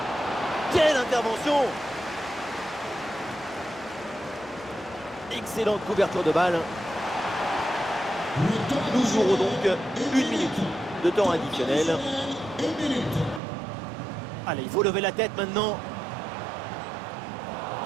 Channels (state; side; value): drops out; left; at 13.4 s